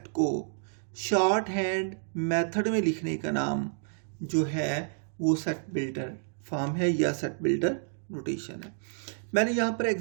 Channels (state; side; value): silent; left; digital silence